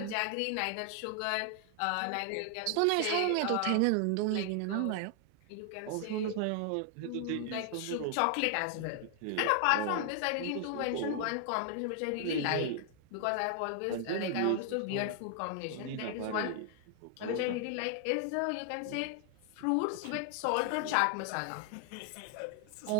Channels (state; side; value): different; both; correlation 0.00